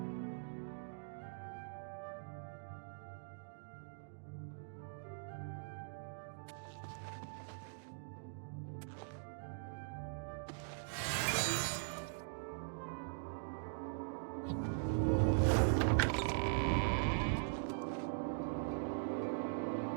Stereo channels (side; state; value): left; silent; digital silence